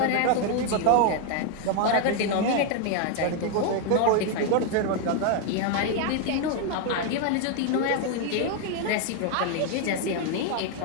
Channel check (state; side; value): different; both; correlation 0.00